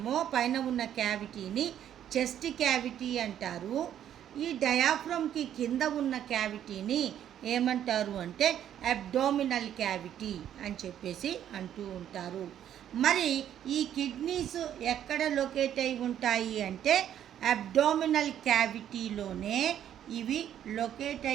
పైన ఉన్న క్యావిటీని చెస్ట్ క్యావిటీ అంటారు. ఈ డయాఫ్రమ్కి కింద ఉన్న క్యావిటీని ఏమంటారు అంటే అబ్డామినల్ క్యావిటీ అని చెప్పేసి అంటూ ఉంటారు. మరి ఈ కిడ్నీస్ ఎక్కడ లొకేట్ అయి ఉంటాయి అంటే అబ్డామినల్ క్యావిటీలోనే ఇవి లొకేట్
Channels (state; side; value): quieter; left; 10.4 dB